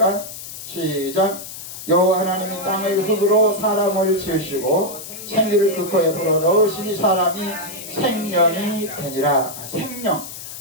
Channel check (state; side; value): noise; left; hiss, 11 dB below the sound